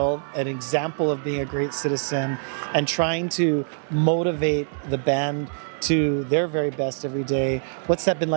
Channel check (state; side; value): silent; left; digital silence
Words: an example of being a great citizen, and trying to motivate the band to their very best every day. What's that been